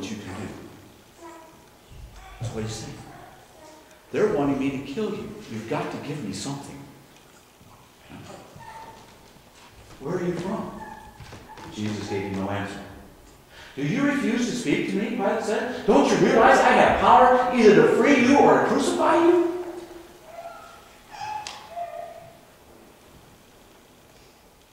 you can do. That's what he's saying. They're wanting me to kill you. You've got to give me something. Where are you from? Jesus gave him no answer. "Do you refuse to speak to me?" Pilate said. "Don't you realize I have power either to free you or to crucify you?"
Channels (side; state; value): both; identical; correlation 1.00